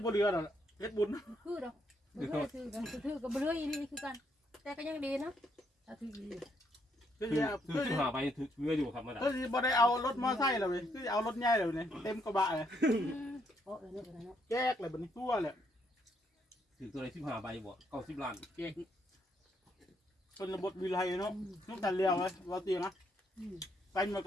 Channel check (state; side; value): normal; both; correlation 0.73